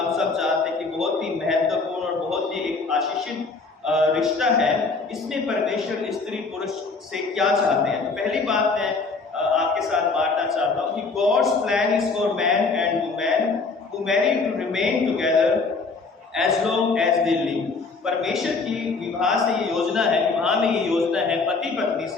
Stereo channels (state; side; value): quieter; right; 4.2 dB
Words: सब जानते हैं कि बहुत ही महत्वपूर्ण और बहुत ही एक आशीषित रिश्ता है, इसमें परमेश्वर स्त्री पुरुष से क्या चाहते हैं। तो पहली बात मैं आपके साथ बांटना चाहता हूँ कि God's plan is for man and women who marry to remain together as long as they live। परमेश्वर की विवाह से ये योजना है, विवाह में ये योजना है पति पत्नी